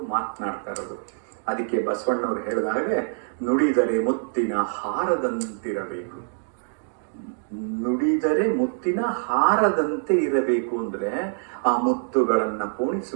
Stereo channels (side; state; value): left; silent; digital silence